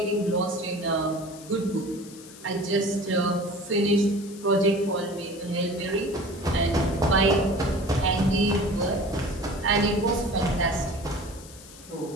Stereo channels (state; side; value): noise; left; hiss, 19 dB below the sound